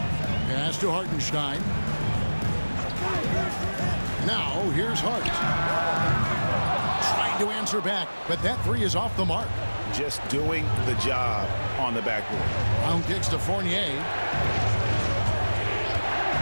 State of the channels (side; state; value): both; inverted; correlation -1.00